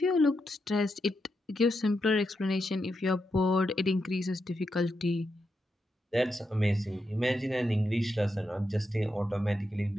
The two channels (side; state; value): both; normal; correlation 0.85